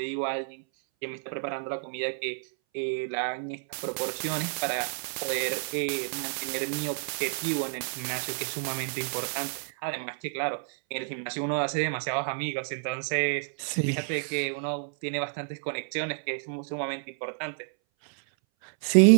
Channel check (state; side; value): silent; left; 58 dB below the other